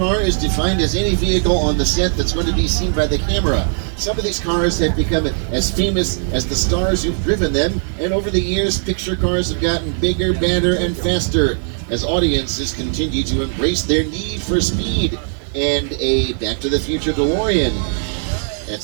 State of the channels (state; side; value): silent; left; digital silence